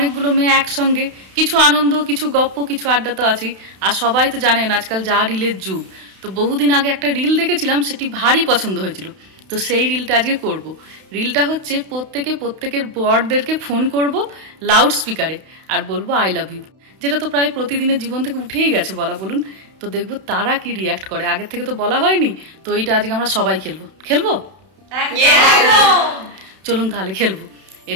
মেয়ে একসঙ্গে, কিছু আনন্দ, কিছু গপ্প, কিছু আড্ডা তো আছেই। আর সবাই তো জানেন আজকাল যা রিলের যুগ। তো বহুদিন আগে একটা রিল দেখেছিলাম, সেটি ভারী পছন্দ হয়েছিল, তো সেই রিলটা আজকে করব। রিলটা হচ্ছে প্রত্যেকের বরদেরকে ফোন করব লাউড স্পিকারে, আর বলবো আই লাভ ইউ, যেটা তো প্রায় প্রতিদিনের জীবন থেকে উঠেই গেছে বলা বলুন। তো দেখবো তারা কি রিয়াক্ট করে, আগের থেকে তো বলা হয়নি, তো এইটা আজকে আমরা সবাই খেলবো। চলুন তাহলে খেলবো। এই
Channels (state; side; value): late; left; 32 ms